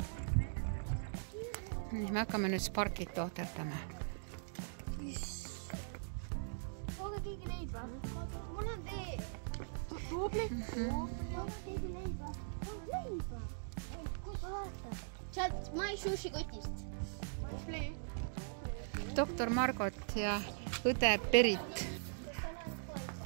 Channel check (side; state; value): left; silent; digital silence